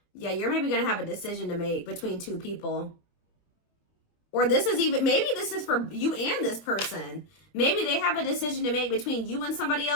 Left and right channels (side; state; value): right; late; 25 ms